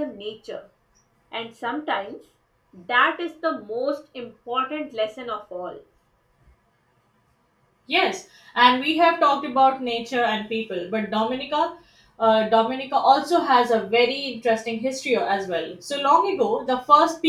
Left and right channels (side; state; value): both; identical; correlation 1.00